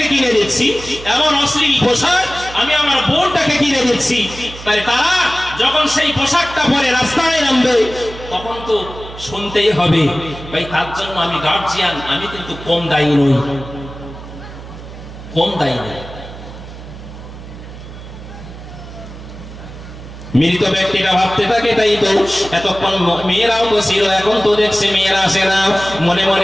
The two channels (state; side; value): noise; right; hum, 14 dB below the sound